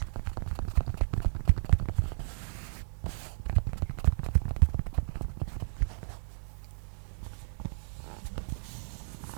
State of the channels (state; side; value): silent; left; digital silence